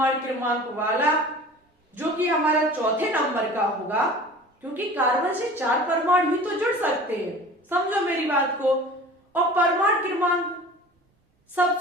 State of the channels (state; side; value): normal; both; correlation 0.41